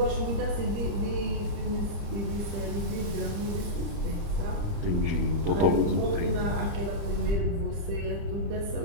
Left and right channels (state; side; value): late; left; 30 ms